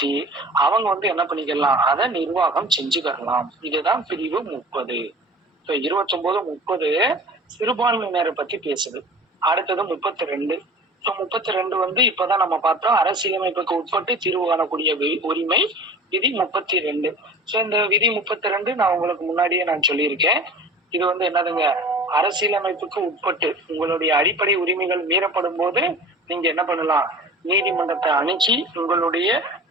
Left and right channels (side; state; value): both; normal; correlation 0.40